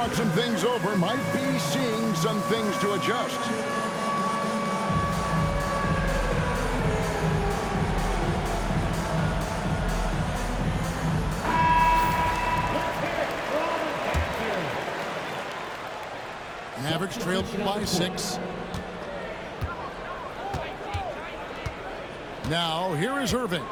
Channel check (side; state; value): both; identical; correlation 1.00